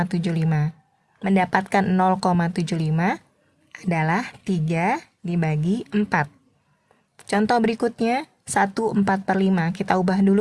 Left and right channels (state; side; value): identical; both; correlation 1.00